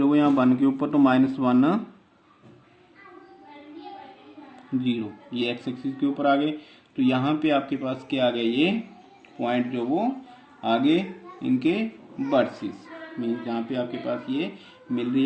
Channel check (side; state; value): both; identical; correlation 1.00